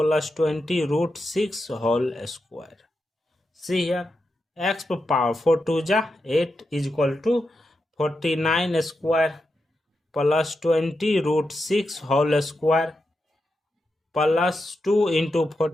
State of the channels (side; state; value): both; normal; correlation 0.87